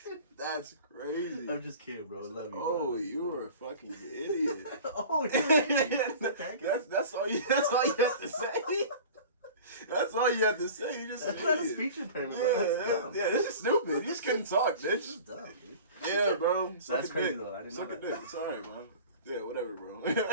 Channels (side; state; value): both; inverted; correlation -0.40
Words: that's crazy. I'm just kidding, bro. I love you. Oh, bro. you were a fucking idiot. Oh, you're an idiot. That's all you have to say. That's all you have to say. You just that's not a speech impairment. Yeah, this is stupid. You just couldn't talk, bitch. This is dumb, dude. Yeah, bro. That's crazy though. I didn't know that. It's alright, bro. Yeah, whatever, bro.